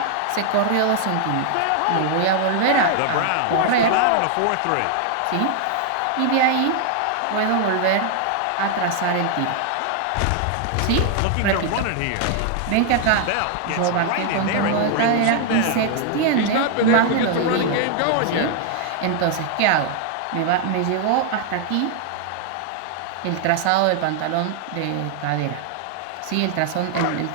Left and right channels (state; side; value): different; both; correlation 0.00